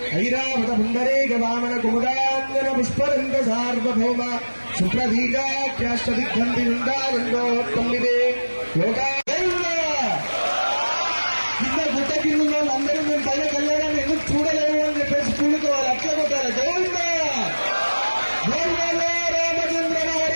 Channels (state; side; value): inverted; both; correlation -1.00